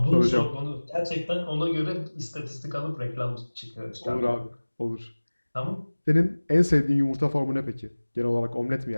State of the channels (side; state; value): both; inverted; correlation -1.00